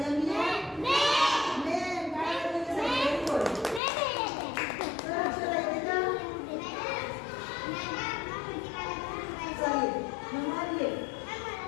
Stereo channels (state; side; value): drops out; right; at 3.8 s